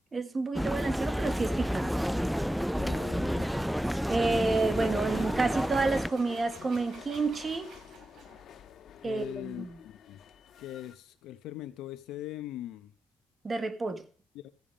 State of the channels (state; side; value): normal; both; correlation 0.92